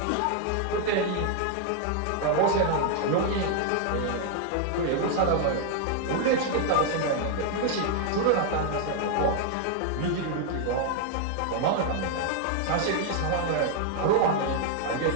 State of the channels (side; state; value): both; different; correlation 0.00